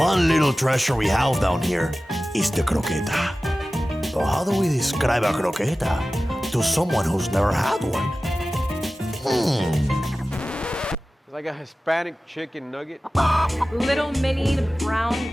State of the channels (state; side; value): normal; both; correlation 0.96